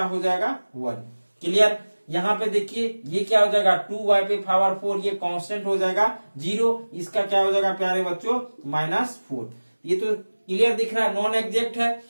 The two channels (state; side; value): inverted; both; correlation -1.00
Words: हो जाएगा 1। क्लियर। यहाँ पे देखिए ये क्या हो जाएगा 2y पे पावर 4, ये कांस्टेंट हो जाएगा 0, इसका क्या हो जाएगा प्यारे बच्चों -4। ये तो क्लियर दिख रहा है, नॉन एग्जैक्ट है,